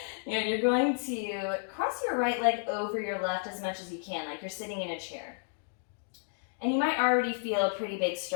You're going to cross your right leg over your left as much as you can, like you're sitting in a chair. And you might already feel a pretty big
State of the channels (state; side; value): silent; right; digital silence